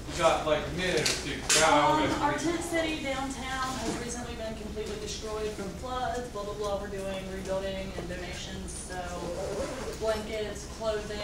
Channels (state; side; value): identical; both; correlation 1.00